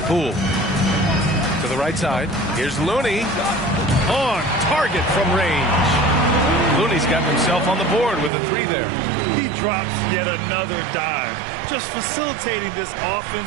Poole. To the right side. Here's Looney. On target from range. Looney's got himself on the board with a 3 there. He drops yet another dive. Just facilitating this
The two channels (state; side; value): drops out; left; at 8.3 s